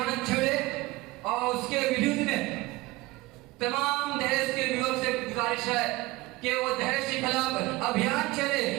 छेड़े और उसके विरुद्ध में तमाम दहेज के युवक से गुजारिश है कि वो दहेज के खिलाफ अभियान चले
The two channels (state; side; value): quieter; left; 20.7 dB